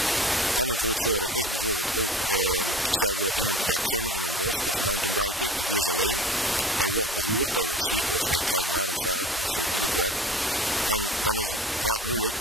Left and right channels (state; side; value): normal; both; correlation 0.39